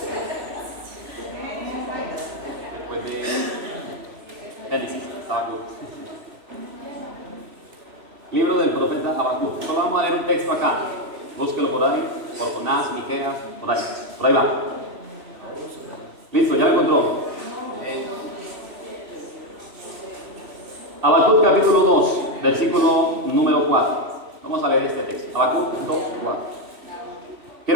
Después de Génesis, Habacuc. Libro del profeta Habacuc. Solo vamos a leer un texto acá. Búsquelo por ahí, por Jonás, Miqueas, por ahí va. Listo, ya lo encontró. Habacuc capítulo 2, versículo número 4. Vamos a leer este texto. Habacuc 2, 4.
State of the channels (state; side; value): late; left; 3.0 ms